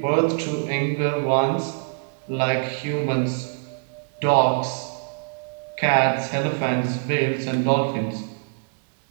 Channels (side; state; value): left; silent; digital silence